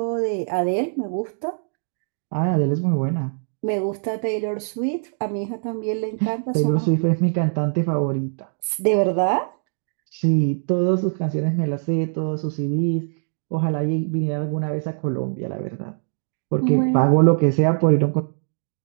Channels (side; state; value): left; silent; digital silence